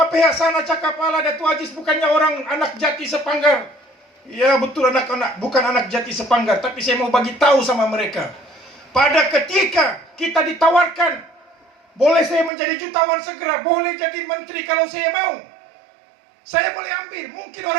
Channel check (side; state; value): left; drops out; at 12.5 s